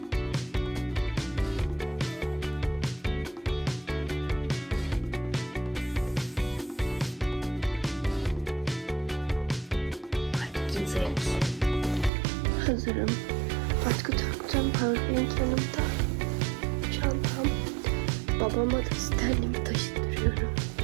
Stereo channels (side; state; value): left; drops out; at 12.1 s